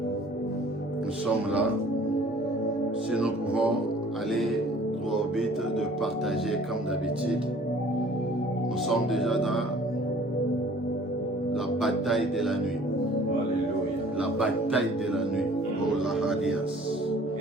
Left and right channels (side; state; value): both; normal; correlation 0.52